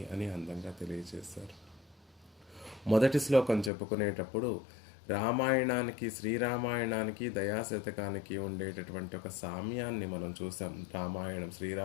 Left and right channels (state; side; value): drops out; right; at 3.7 s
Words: అని అందంగా తెలియజేశారు. మొదటి శ్లోకం చెప్పుకునేటప్పుడు రామాయణానికి, శ్రీరామాయణానికి, దయాశతకానికి ఉండేటటువంటి ఒక సామ్యాన్ని మనం చూసాం. రామాయణం,